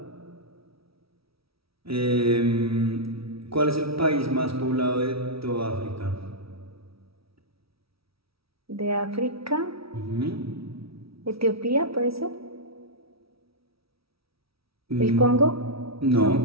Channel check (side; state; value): left; late; 0.76 ms